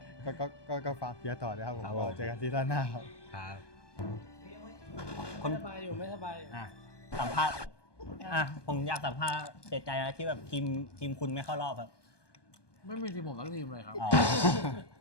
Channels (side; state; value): right; late; 1.2 ms